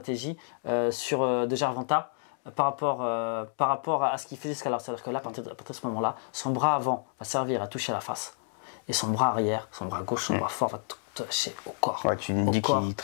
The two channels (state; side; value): silent; right; digital silence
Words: de Gervonta par rapport à ce qu'il faisait jusqu'à l'heure. C'est-à-dire que là, à partir de ce moment-là, son bras avant va servir à toucher la face. Et son bras arrière, son bras gauche, son bras fort va toucher au corps. Ouais, tu me dis qu'il